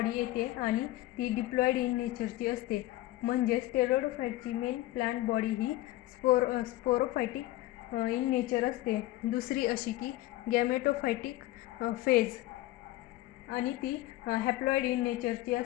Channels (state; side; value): quieter; right; 16.8 dB